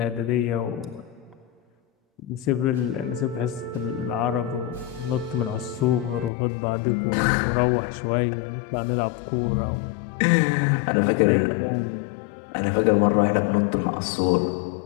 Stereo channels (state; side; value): drops out; right; at 6.3 s